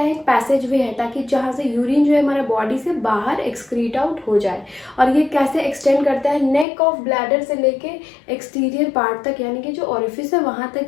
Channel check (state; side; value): drops out; right; at 6.7 s